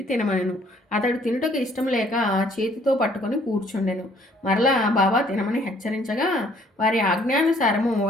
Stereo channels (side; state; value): both; normal; correlation 0.61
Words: తినమనెను. అతడు తినుటకు ఇష్టం లేక చేతితో పట్టుకొని కూర్చుండెను. మరలా బాబా తినమని హెచ్చరించగా వారి ఆజ్ఞానుసారము